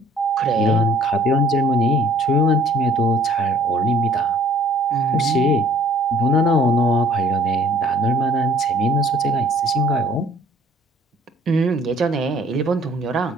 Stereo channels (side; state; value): both; normal; correlation 0.55